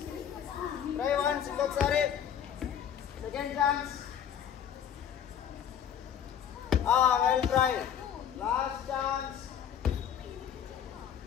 Try once, ఇంకొకసారి. Second chance. Well try. Last chance.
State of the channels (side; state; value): right; quieter; 9.0 dB